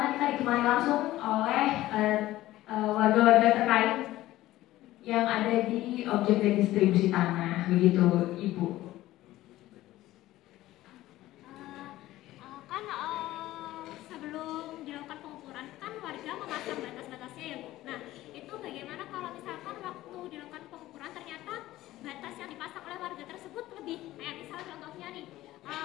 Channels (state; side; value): quieter; right; 15.8 dB